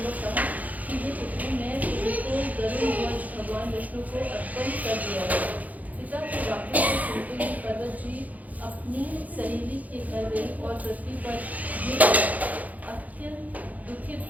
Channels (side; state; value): left; late; 0.077 ms